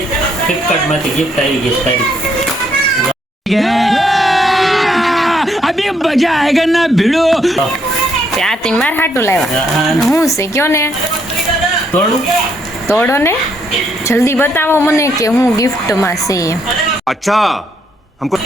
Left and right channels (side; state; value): both; normal; correlation 0.73